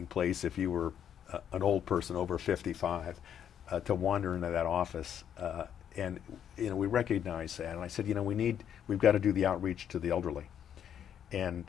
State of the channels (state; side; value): quieter; right; 9.1 dB